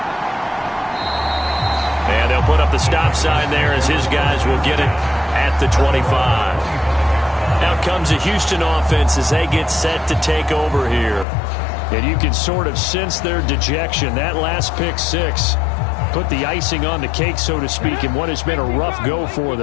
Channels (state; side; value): drops out; right; at 11.2 s